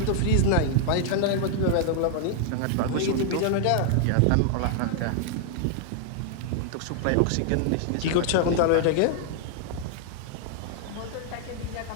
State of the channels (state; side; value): different; both; correlation -0.01